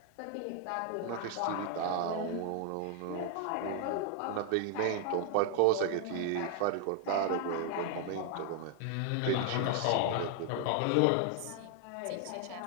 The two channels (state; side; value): different; both; correlation 0.00